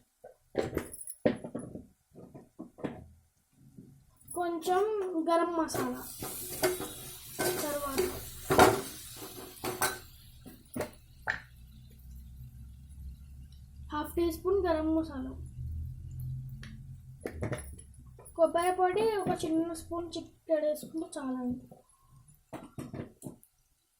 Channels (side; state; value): both; identical; correlation 1.00